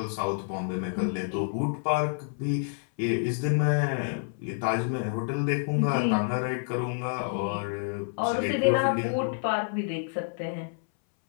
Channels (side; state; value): right; silent; 59 dB below the other